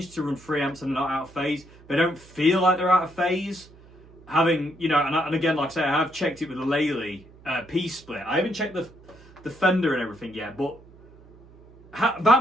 to run 3 amps and they're not out of phase. They don't feel like they're out of phase. Having, you know, and again, like I say, I have checked it with the Lely P-split. I haven't checked the Fender and everything yet, but that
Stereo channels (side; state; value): right; noise; hum, 24 dB below the sound